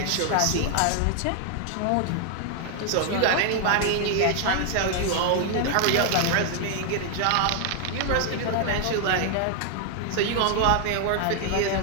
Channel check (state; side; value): different; both; correlation 0.00